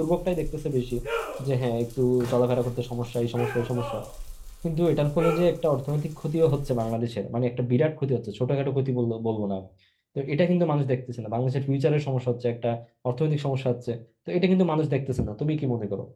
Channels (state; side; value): identical; both; correlation 1.00